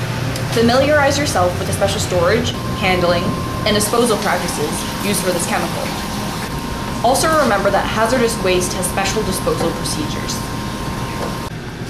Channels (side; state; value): both; identical; correlation 1.00